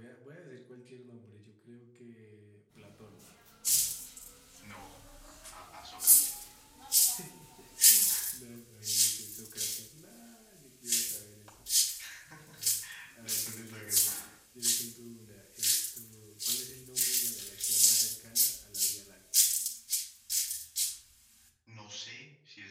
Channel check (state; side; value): identical; both; correlation 1.00